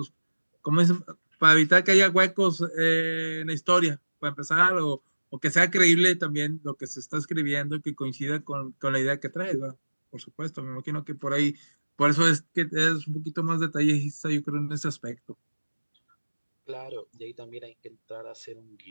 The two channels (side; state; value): both; inverted; correlation -1.00